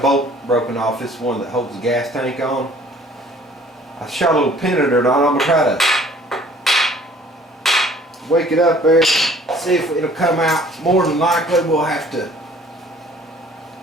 bolt broken off. This one that holds the gas tank on. I shot a little pin in it on. I'm going to try to wake it up there, see if it'll come out. More than likely we'll have to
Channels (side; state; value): both; normal; correlation 0.54